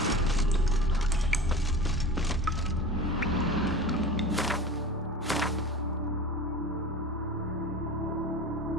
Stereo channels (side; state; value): both; normal; correlation 0.36